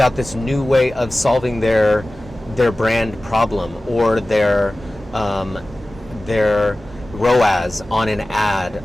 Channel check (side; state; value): both; normal; correlation 0.97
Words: this new way of solving their brand problem or their ROAS on an ad,